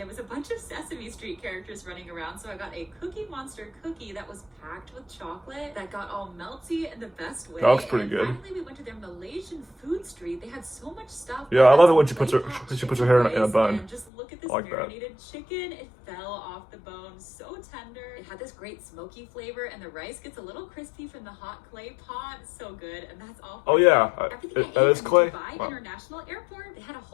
was a bunch of Sesame Street characters running around, so I got a Cookie Monster cookie that was packed with chocolate that got all melty in the best way. That looks pretty and good. Finally, we went to their Malaysian food street. They had so much stuff. Yeah, I love it when she puts her hair in a bun. And just look at this like marinated chicken. It fell off the bone, so tender. It had this great smoky flavor, and the rice gets a little crispy from the hot clay pot. So good, and that's all. Oh yeah, that is clay. Dubai International Airport. They had a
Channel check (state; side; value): drops out; right; at 14.1 s